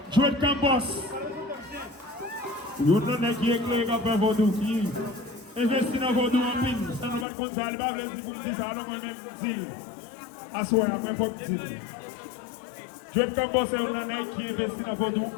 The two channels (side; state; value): right; drops out; at 7.2 s